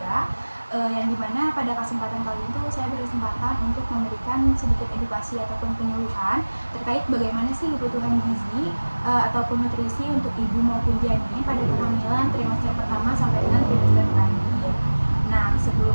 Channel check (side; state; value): both; inverted; correlation -1.00